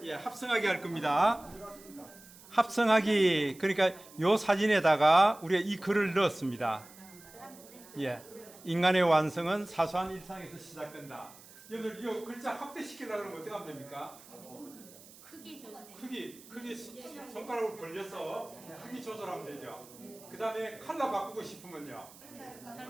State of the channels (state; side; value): noise; right; hiss, 21 dB below the sound